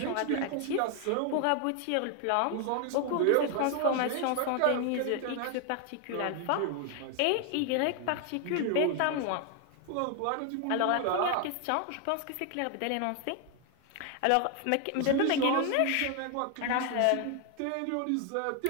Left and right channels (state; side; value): different; both; correlation 0.00